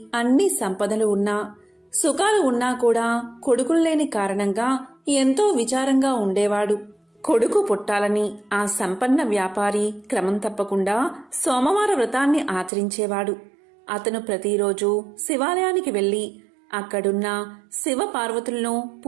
అన్ని సంపదలు ఉన్నా, సుఖాలు ఉన్నా కూడా కొడుకులు లేని కారణంగా ఎంతో విచారంగా ఉండేవాడు. కొడుకు పుట్టాలని ఆ సంపన్న వ్యాపారి క్రమం తప్పకుండా సోమవార వ్రతాన్ని ఆచరించేవాడు. అతను ప్రతిరోజు శివాలయానికి వెళ్లి అక్కడున్న శివ పార్వతులను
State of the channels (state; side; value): drops out; left; at 12.7 s